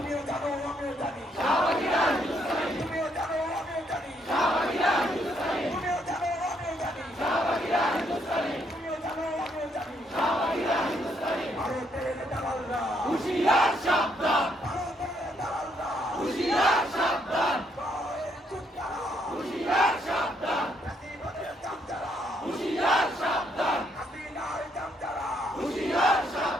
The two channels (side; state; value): both; normal; correlation 0.73